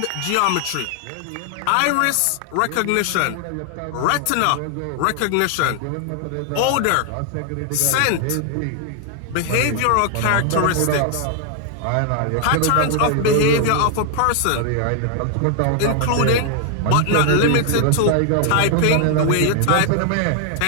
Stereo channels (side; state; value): both; different; correlation 0.00